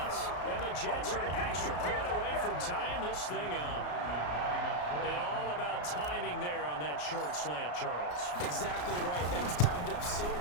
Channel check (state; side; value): late; right; 34 ms